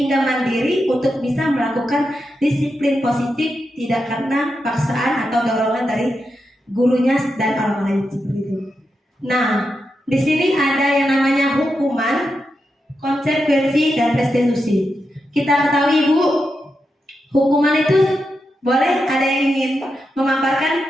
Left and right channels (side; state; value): both; normal; correlation 0.87